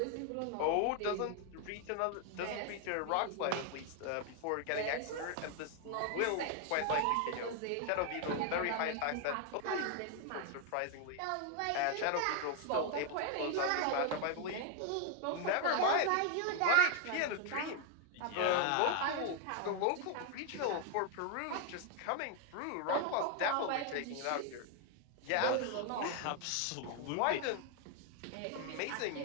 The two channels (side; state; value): both; different; correlation 0.00